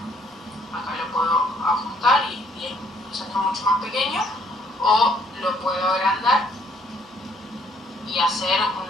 Acá lo puedo ajustar y hacerlo mucho más pequeño, o lo puedo agrandar y hacer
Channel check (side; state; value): both; normal; correlation 0.66